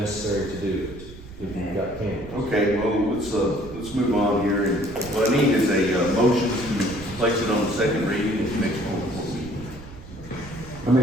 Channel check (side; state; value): right; noise; rumble, 16 dB below the sound